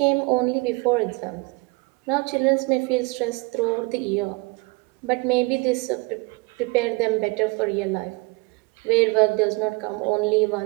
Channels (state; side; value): quieter; left; 26.6 dB